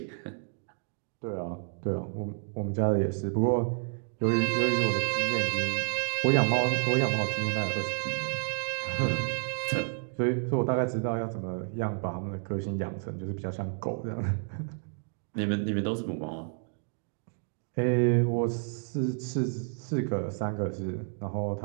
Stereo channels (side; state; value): left; silent; 55 dB below the other